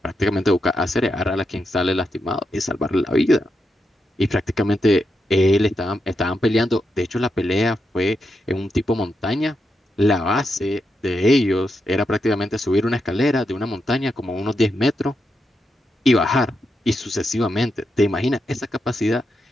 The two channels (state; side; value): normal; both; correlation 0.85